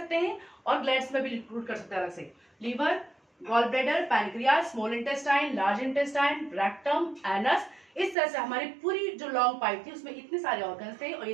हैं और ग्लैंड्स में भी इंक्लूड कर सकते हैं अलग से। Liver, gall bladder, pancreas, small intestine, large intestine, rectum, anus. इस तरह से हमारी पूरी जो लॉन्ग पाइप थी उसमें इतने सारे ऑर्गन थे और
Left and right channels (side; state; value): left; drops out; at 8.2 s